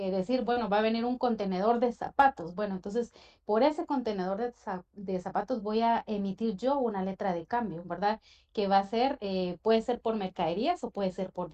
bueno, va a venir un contenedor de zapatos. Bueno, entonces por ese contenedor de zapatos voy a emitir yo una letra de cambio, ¿verdad? Que va a ser, puede ser por mercaderías o puede ser por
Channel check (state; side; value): identical; both; correlation 1.00